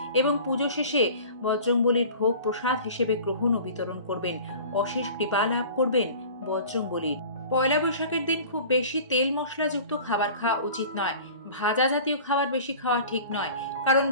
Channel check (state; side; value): inverted; both; correlation -0.42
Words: এবং পুজো শেষে বজরংবলীর ভোগ প্রসাদ হিসেবে গ্রহণ ও বিতরণ করবেন। অশেষ কৃপা লাভ করবেন বজরংবলীর। পয়লা বৈশাখের দিন খুব বেশি তেল মশলাযুক্ত খাবার খাওয়া উচিত নয়। ভাজা জাতীয় খাবার বেশি খাওয়া ঠিক নয়, কারণ